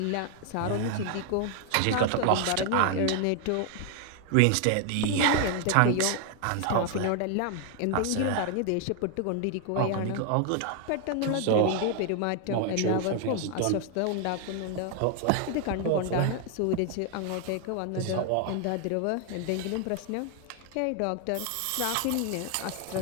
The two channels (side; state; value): both; different; correlation 0.00